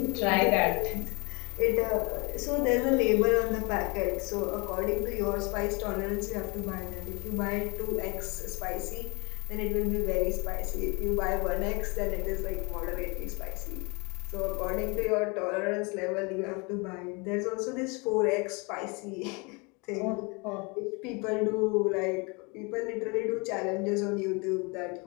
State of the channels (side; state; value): right; quieter; 29.4 dB